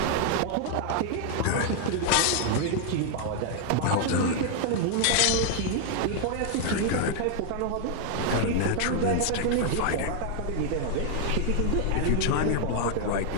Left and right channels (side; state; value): both; different; correlation 0.00